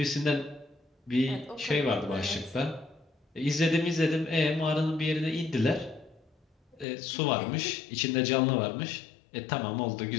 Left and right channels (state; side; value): drops out; right; at 6.9 s